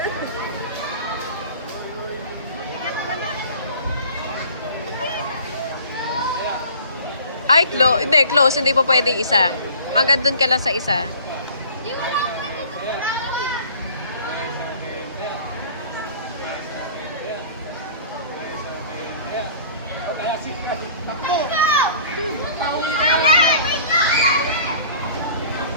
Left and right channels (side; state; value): both; inverted; correlation -0.47